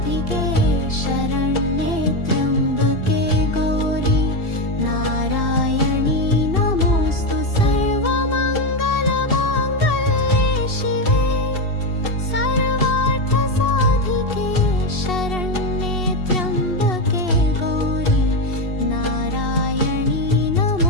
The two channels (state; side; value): late; right; 2.7 ms